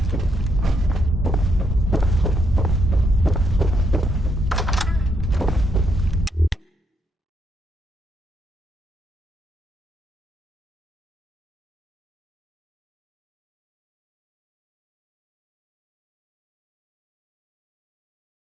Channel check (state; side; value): normal; both; correlation 0.76